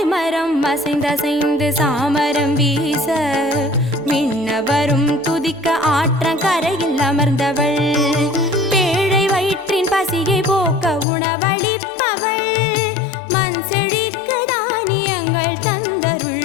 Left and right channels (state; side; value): drops out; right; at 11.1 s